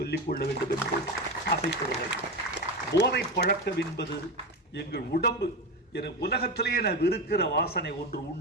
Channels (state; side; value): normal; both; correlation 0.18